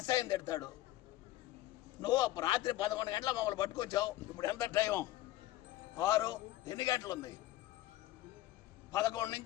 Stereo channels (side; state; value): right; quieter; 15.6 dB